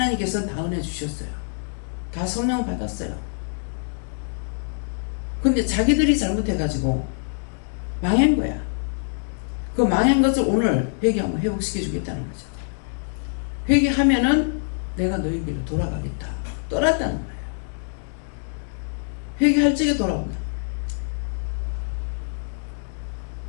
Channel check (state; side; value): silent; right; digital silence